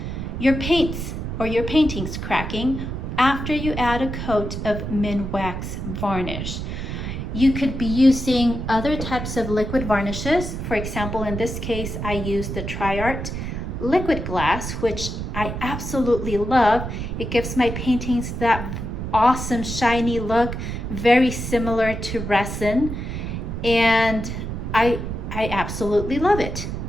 your paints or your paintings cracking after you add a coat of Minwax varnish. You could be using other types of liquid varnishes. For example, in this case, I used the Tshirts liquid glass, which I absolutely love. It gives my paintings that awesome shiny look, very similar to resin, and I absolutely love it.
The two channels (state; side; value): noise; right; rumble, 5 dB below the sound